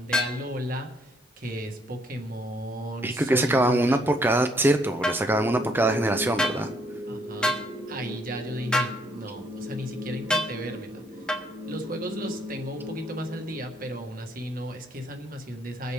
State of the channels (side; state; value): both; normal; correlation 0.69